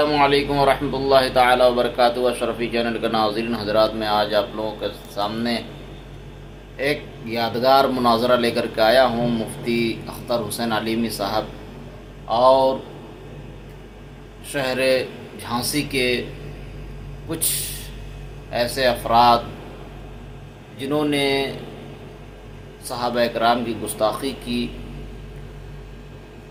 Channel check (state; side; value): identical; both; correlation 1.00